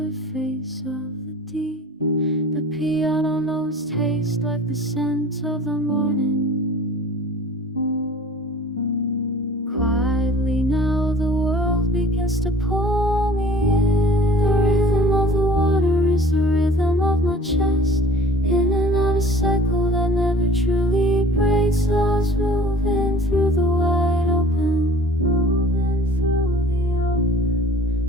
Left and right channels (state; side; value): normal; both; correlation 0.46